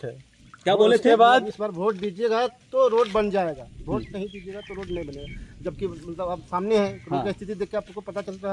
क्या बोले थे? बाद इस बार वोट दीजिएगा तो रोड बन जाएगा, वोट नहीं दीजिएगा तो रोड नहीं बनेगा। जबकि मतलब आप सामने हैं, रोड की स्थिति देख के आपको पता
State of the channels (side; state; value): both; identical; correlation 1.00